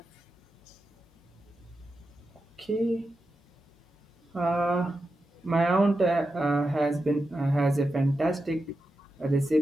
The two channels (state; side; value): normal; both; correlation 0.89